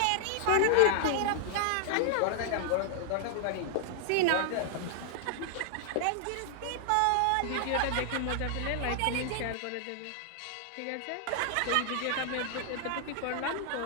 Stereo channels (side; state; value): both; different; correlation 0.00